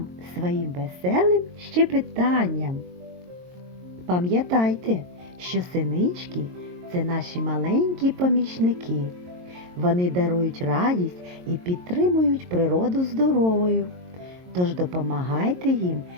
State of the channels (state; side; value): late; left; 22 ms